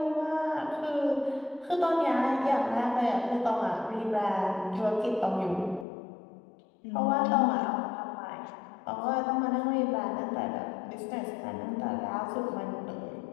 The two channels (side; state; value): right; drops out; at 5.9 s